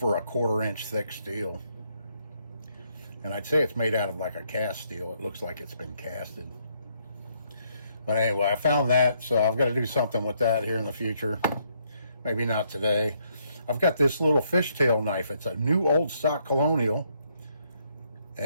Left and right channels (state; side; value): inverted; both; correlation -0.72